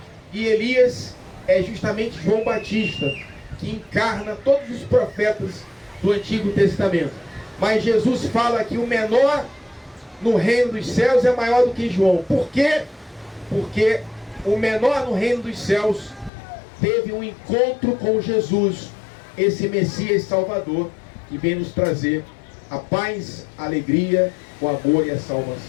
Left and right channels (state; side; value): drops out; right; at 16.3 s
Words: E Elias é justamente João Batista, que encarna todos os profetas do Antigo Testamento. Mas Jesus fala que o menor no reino dos céus é maior do que João. Por quê? Porque o menor no reino dos céus teve um encontro com Jesus, esse Messias Salvador, que vem nos trazer a paz, a alegria, o amor e a